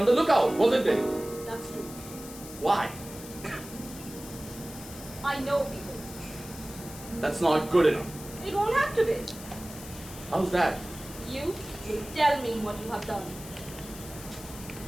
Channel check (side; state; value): left; noise; hiss, 14 dB below the sound